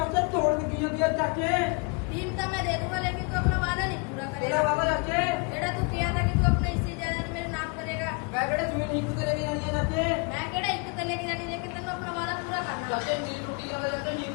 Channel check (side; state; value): right; quieter; 33.1 dB